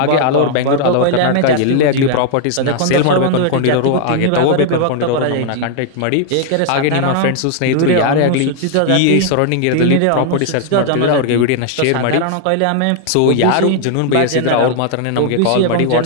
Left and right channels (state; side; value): different; both; correlation 0.00